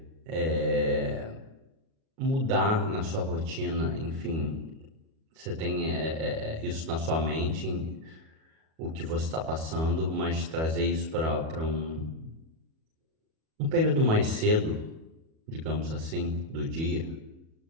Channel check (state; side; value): late; left; 37 ms